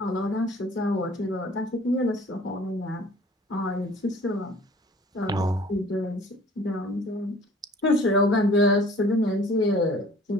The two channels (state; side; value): normal; both; correlation 0.51